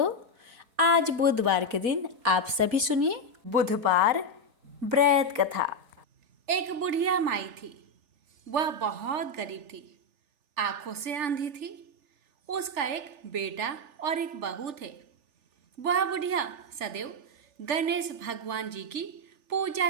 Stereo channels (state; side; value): late; left; 3.4 ms